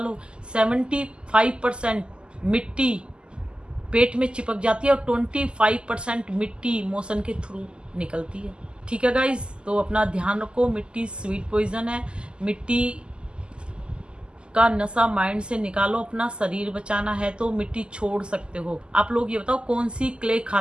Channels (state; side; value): late; left; 0.049 ms